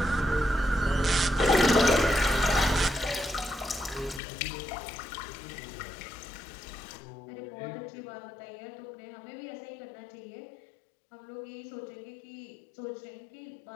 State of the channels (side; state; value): right; drops out; at 4.2 s